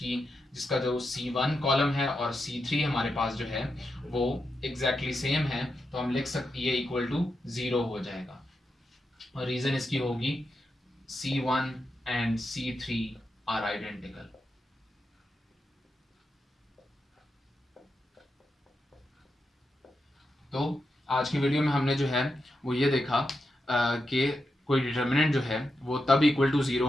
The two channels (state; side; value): normal; both; correlation 0.87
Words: जो C1 कॉलम है और C3 हमारे पास जो है वो एग्जैक्टली सेम है, तो हम लिख सकते ये इक्वल टू 0 हो जाएगा। और रीज़न इसकी होगी C1 and C3 are identical. तो आज की वीडियो में हमने जो है वो ये देखा कि कोई डिटर्मिनेंट जो है वो तब इक्वल टू ज़ीरो